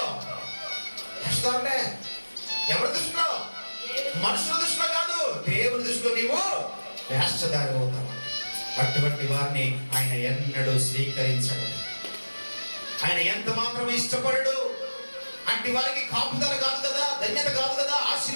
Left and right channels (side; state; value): both; inverted; correlation -1.00